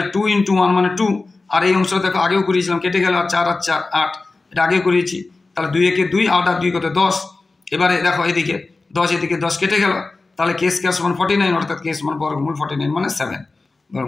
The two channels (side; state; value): right; quieter; 3.6 dB